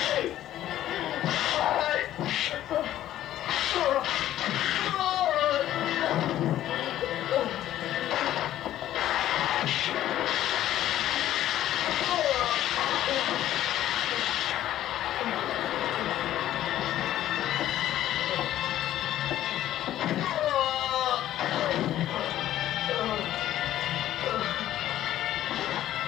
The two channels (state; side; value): quieter; right; 12.9 dB